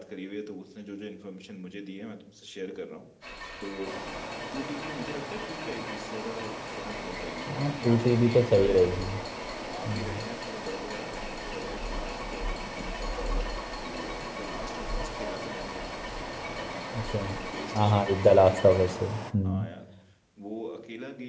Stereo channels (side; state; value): both; identical; correlation 1.00